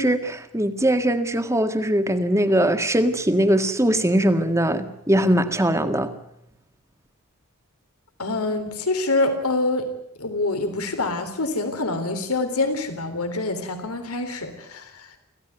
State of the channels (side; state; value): both; normal; correlation 0.50